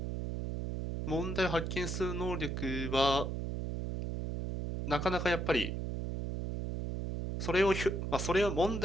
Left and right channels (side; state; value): right; noise; hum, 3 dB below the sound